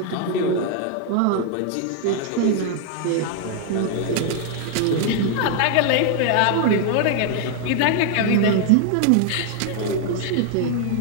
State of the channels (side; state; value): both; different; correlation 0.00